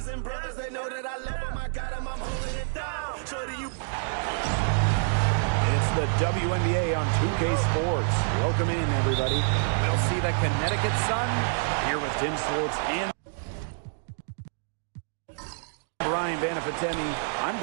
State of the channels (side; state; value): left; silent; digital silence